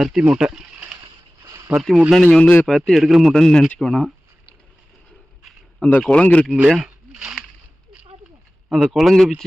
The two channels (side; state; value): both; normal; correlation 0.97